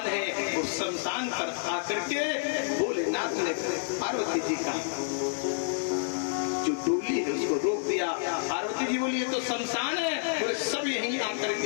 है वो शमशान पर आकर के भोलेनाथ ने पार्वती जी का जो डोली है उसको रोक दिया। पार्वती जी बोली ये तो शमशान है, बोले सब यहीं आकर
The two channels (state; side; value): silent; right; 58 dB below the other